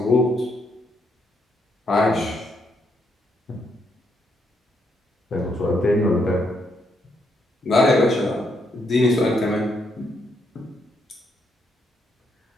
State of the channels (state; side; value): normal; both; correlation 0.76